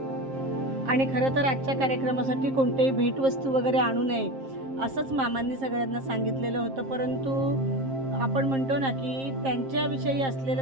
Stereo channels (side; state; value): left; late; 7.5 ms